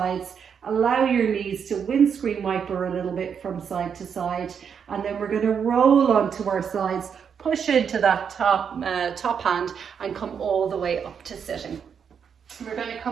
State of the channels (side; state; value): left; quieter; 7.1 dB